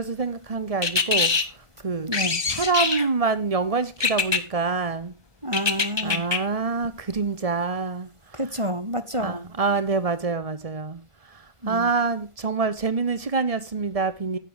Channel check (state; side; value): late; left; 1.2 ms